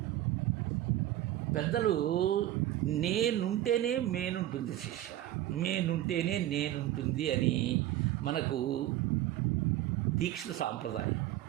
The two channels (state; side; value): quieter; left; 13.8 dB